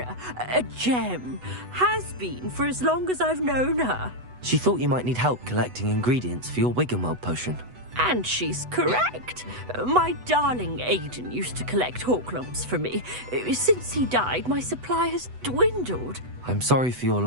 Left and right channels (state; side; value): late; left; 8.1 ms